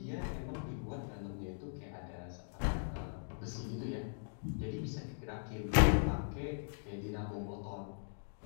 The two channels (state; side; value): silent; right; digital silence